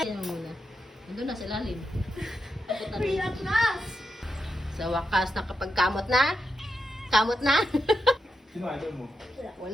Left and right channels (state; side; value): normal; both; correlation 0.86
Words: Yan muna. Nandun na sa ilalim. Sa wakas, nakapagkamot na? Kamot na? Sino idol mo?